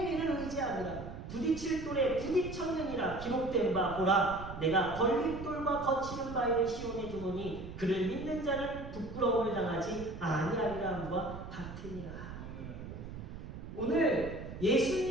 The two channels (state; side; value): noise; right; rumble, 10 dB below the sound